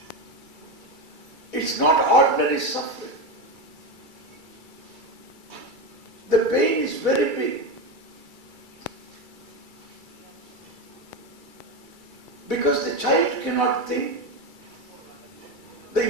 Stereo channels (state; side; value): late; left; 2.3 ms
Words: It's not ordinary suffering. The pain is very big. Because the child cannot think.